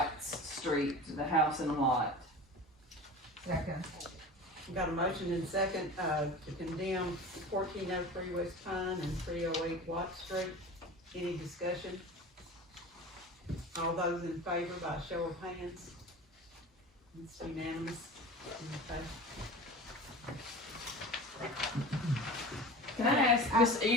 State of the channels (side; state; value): both; normal; correlation 0.35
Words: Street, the house and the lot. Second. We've got a motion and second, to condemn 1403 West Pine and 308 Watt Street. Any discussion? All those in favor by show of hands? It's unanimous. Okay. Can I ask Miss